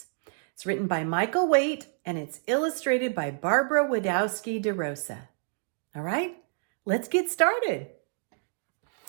It's written by Michael Waite, and it's illustrated by Barbara Wadowski DeRosa. All right, let's get started.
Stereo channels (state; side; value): silent; left; 59 dB below the other